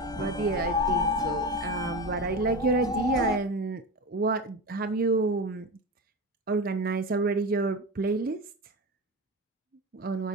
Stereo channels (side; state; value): both; normal; correlation 0.23